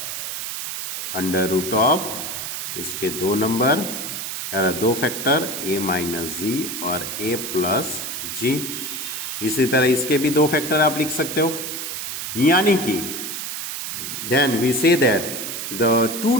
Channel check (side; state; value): right; noise; hiss, 5 dB below the sound